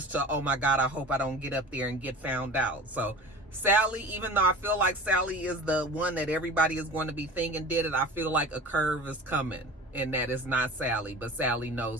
to, oh my God, I hope I don't get up there and get found out. So Sally, even though I feel like Sally is the one that everybody is going to be thinking did it, I feel like a curve is coming, and that is not Sally, but Sally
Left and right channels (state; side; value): normal; both; correlation 0.37